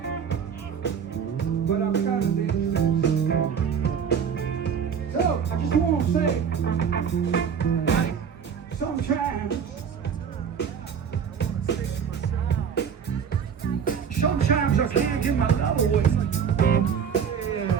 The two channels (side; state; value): left; quieter; 7.3 dB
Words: But I'm kind of dangerous. say, sometimes I can't get my love away. Yeah.